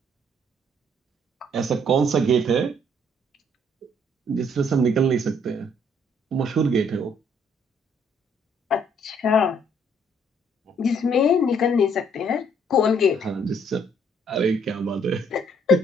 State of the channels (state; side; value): normal; both; correlation 0.65